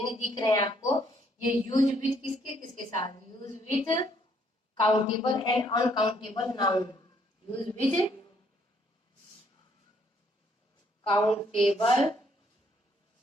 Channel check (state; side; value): normal; both; correlation 0.68